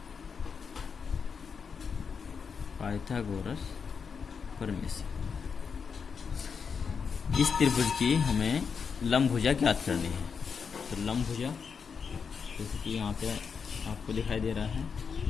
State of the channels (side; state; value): right; quieter; 6.0 dB